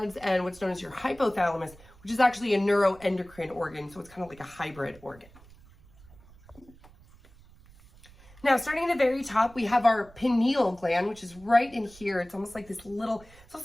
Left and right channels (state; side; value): noise; right; rumble, 24 dB below the sound